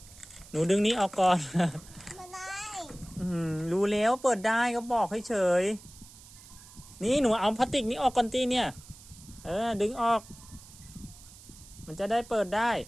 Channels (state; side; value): noise; right; hiss, 20 dB below the sound